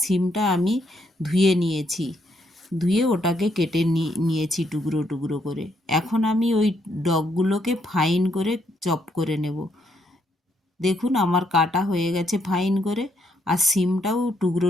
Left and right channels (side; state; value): both; normal; correlation 0.74